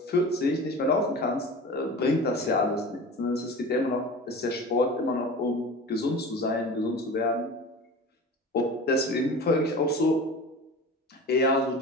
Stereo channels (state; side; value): normal; both; correlation 0.35